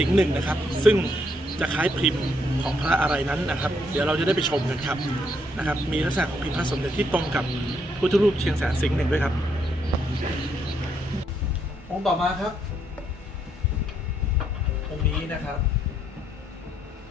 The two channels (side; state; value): both; normal; correlation 0.74